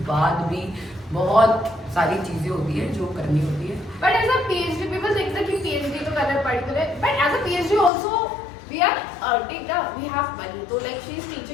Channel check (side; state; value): right; drops out; at 7.9 s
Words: बाद भी बहुत सारी चीजें होती है जो करनी होती है। But as a PhD people think that कि पीएचडी तो करना पड़ता है, but as a PhD also we are earning we have money, so like she is